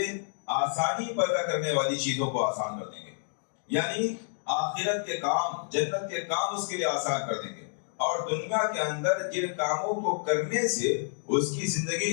آسانی پیدا کرنے والی چیزوں کو آسان کر دیں گے، یعنی آخرت کے کام، جنت کے کام اس کے لیے آسان کر دیں گے، اور دنیا کے اندر جن کاموں کو کرنے سے اس کی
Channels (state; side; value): silent; right; digital silence